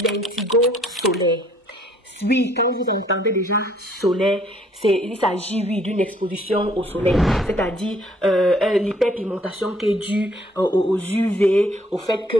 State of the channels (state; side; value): normal; both; correlation 0.62